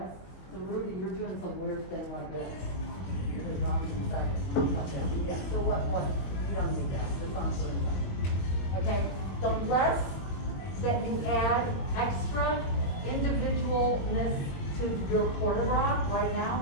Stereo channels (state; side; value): late; right; 22 ms